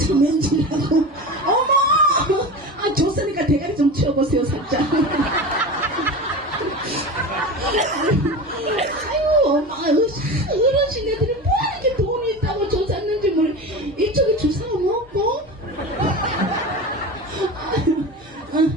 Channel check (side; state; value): both; normal; correlation 0.28